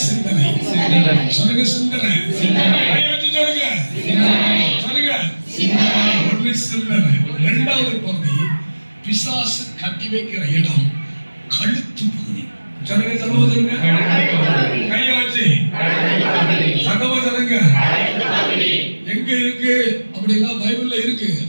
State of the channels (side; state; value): both; inverted; correlation -1.00